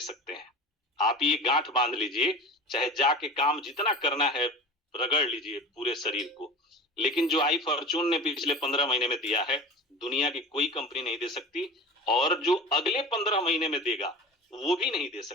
सकते हैं। आप ये गांठ बांध लीजिए, चाहे जाके काम जितना करना है रगड़ लीजिए पूरे शरीर को, लेकिन जो आई फॉर्चून ने पिछले 15 महीने में दिया है दुनिया की कोई कंपनी नहीं दे सकती, और जो अगले 15 महीने में देगा वो भी नहीं दे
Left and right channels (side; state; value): both; normal; correlation 0.33